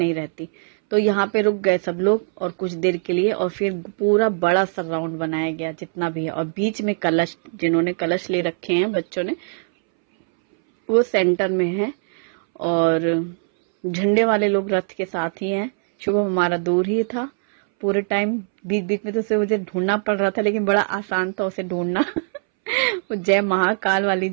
रहती। तो यहाँ पे रुक गए सब लोग और कुछ देर के लिए, और फिर पूरा बड़ा सा राउंड बनाया गया जितना भी है, और बीच में कलश, जिन्होंने कलश ले रखे हैं बच्चों ने, वो सेंटर में है, और झंडे वाले लोग रथ के साथ ही हैं। शुभम हमारा दूर ही था पूरे टाइम, बीच बीच में तो उसे मुझे ढूंढना पड़ रहा था, लेकिन बड़ा आसान था उसे ढूंढना। वो जय महाकाल वाली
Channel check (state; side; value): silent; left; 63 dB below the other